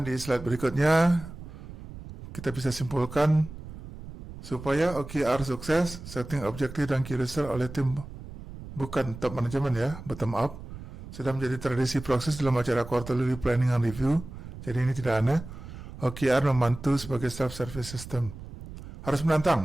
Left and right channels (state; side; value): noise; right; rumble, 13 dB below the sound